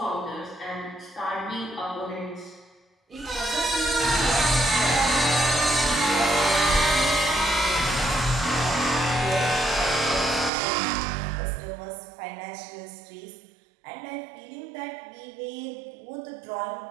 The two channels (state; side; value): drops out; left; at 10.5 s